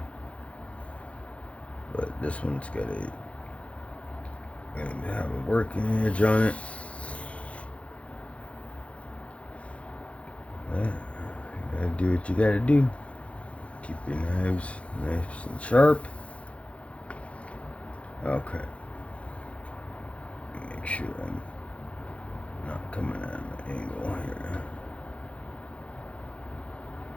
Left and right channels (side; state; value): right; late; 0.062 ms